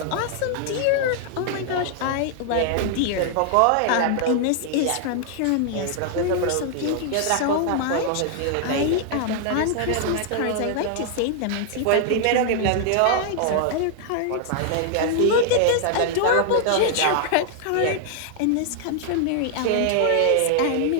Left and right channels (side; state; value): both; different; correlation -0.01